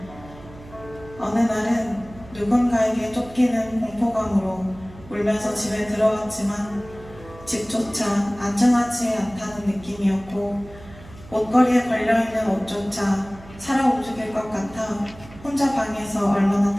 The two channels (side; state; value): right; noise; hum, 19 dB below the sound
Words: 어느 날은 누군가에게 쫓기는 공포감으로 울면서 집에 들어왔지만 집조차 안전하지 않다는 느낌이었고, 옷걸이에 걸려있는 옷조차 살아 움직일 것 같아 혼자 방에서 얼마나